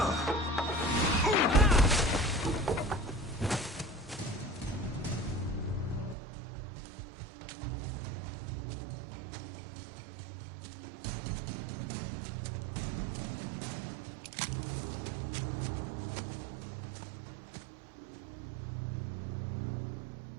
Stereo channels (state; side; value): drops out; left; at 6.2 s